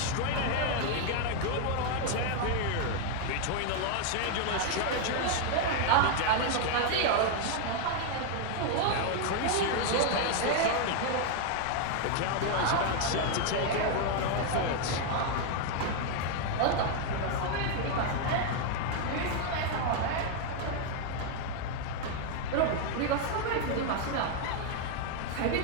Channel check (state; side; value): different; both; correlation 0.00